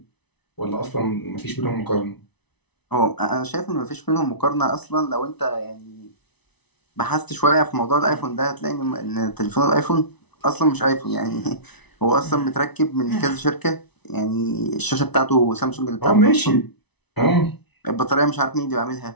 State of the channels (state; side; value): late; right; 0.99 ms